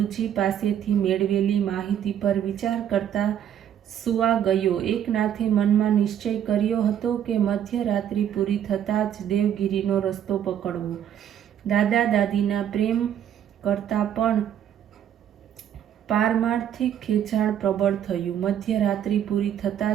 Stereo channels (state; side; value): quieter; left; 9.8 dB